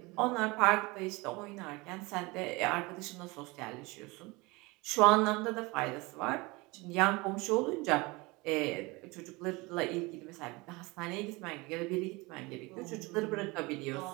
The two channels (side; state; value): left; quieter; 24.4 dB